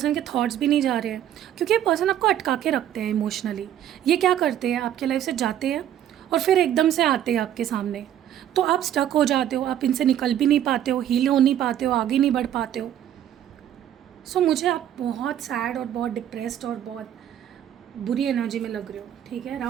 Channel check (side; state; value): left; quieter; 10.9 dB